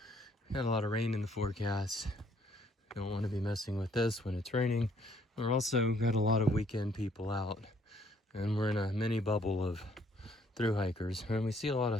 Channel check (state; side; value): normal; both; correlation 0.66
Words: we had a lot of rain in the forecast. Don't want to be messing with this when it's raining. We're also got a lot of weekend people out, and we're in a mini bubble of thru hikers, and we see a lot